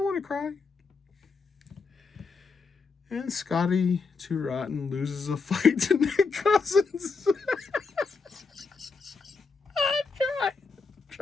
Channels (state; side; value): quieter; right; 4.6 dB